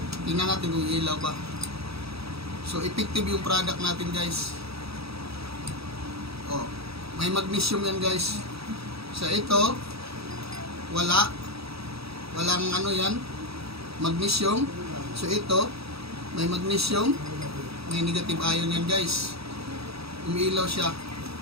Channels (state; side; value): late; left; 0.77 ms